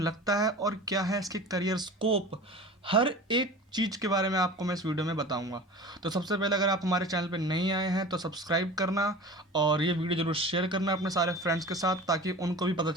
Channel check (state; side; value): normal; both; correlation 0.36